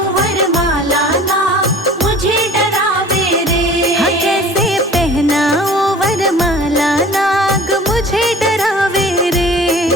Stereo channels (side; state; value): both; normal; correlation 0.45